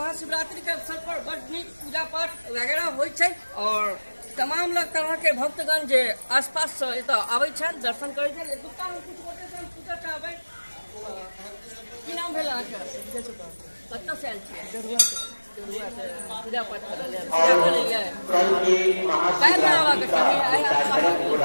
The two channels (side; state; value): both; inverted; correlation -1.00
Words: के अवसर पर बड़ नीक पूजा पाठ वगैरह होइ छै और तमाम लोग तरह के भक्तगण जे आसपास से एतऽ आबै छथि, दर्शन करै छथि। एतुका हम किछु गोटे से पूछऽ चाहबै, की नाम भेल अहाँके? कतऽ से आयल छियै? देरुआ से पूजा पाठ करऽ लेल काल्हि आबऽ के